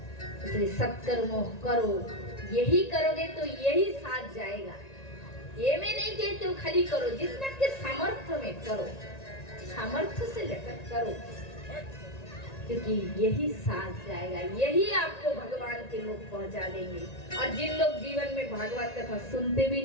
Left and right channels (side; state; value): right; late; 1.9 ms